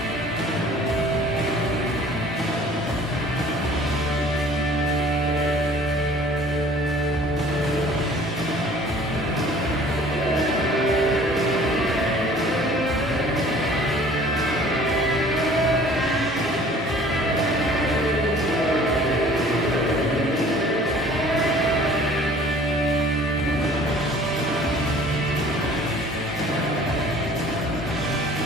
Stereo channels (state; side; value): normal; both; correlation 0.51